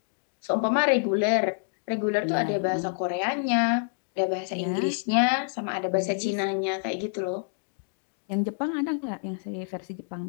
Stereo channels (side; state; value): right; silent; digital silence